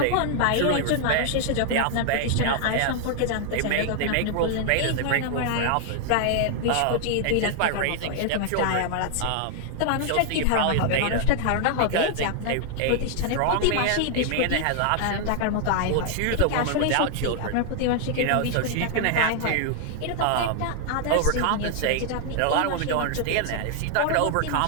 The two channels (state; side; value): different; both; correlation 0.00